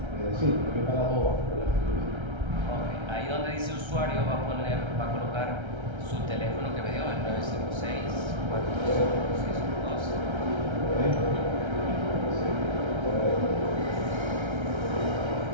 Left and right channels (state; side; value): late; left; 1.3 ms